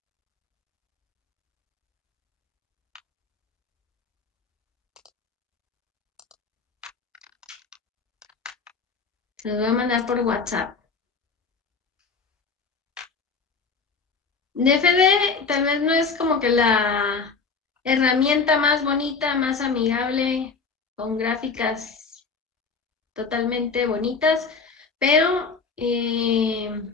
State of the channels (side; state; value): right; quieter; 4.8 dB